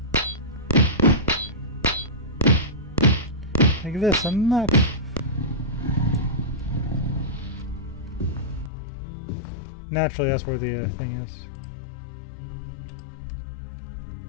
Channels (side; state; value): right; drops out; at 8.7 s